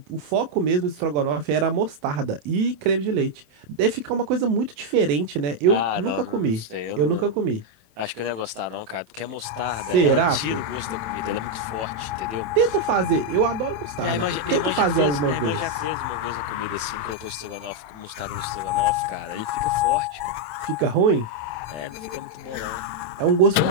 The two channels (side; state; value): left; late; 27 ms